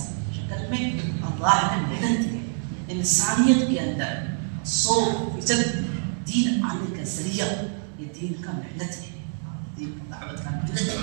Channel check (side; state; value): left; silent; 61 dB below the other